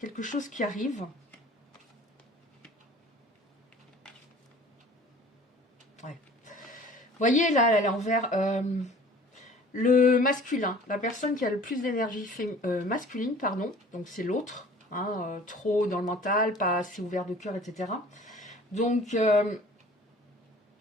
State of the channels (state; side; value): normal; both; correlation 0.48